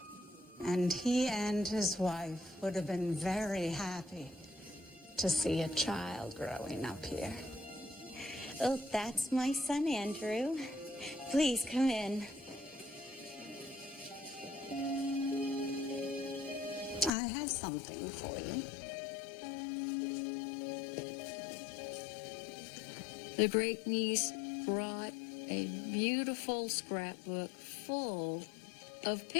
And he and his wife would have been very happy to see a child growing up here. Oh, that's my son, Andrew. Please come in. I have something for you. The great niece brought a beautiful scrapbook full of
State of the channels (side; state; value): right; drops out; at 17.1 s